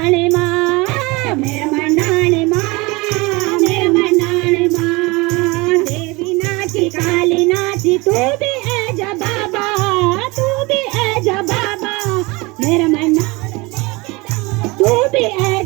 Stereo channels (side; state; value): left; quieter; 24.4 dB